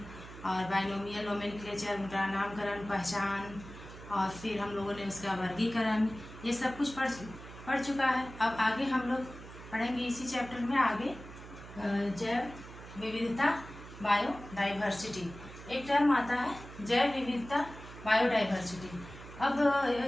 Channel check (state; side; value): noise; right; hum, 15 dB below the sound